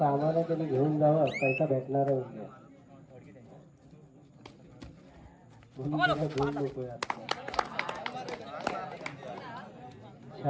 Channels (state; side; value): identical; both; correlation 1.00